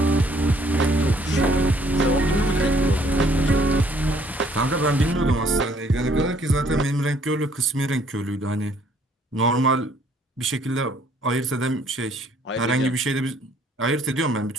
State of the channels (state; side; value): normal; both; correlation 0.63